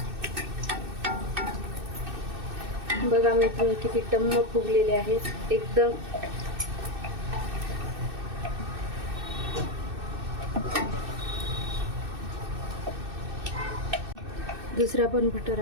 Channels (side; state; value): left; late; 2.6 ms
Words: बघा मी किती टम्म फुगलेले आहेत एकदम. दुसरा पण